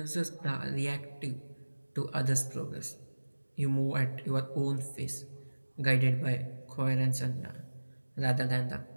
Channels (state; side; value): inverted; both; correlation -1.00